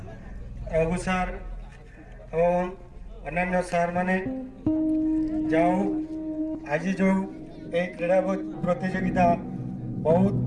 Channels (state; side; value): identical; both; correlation 1.00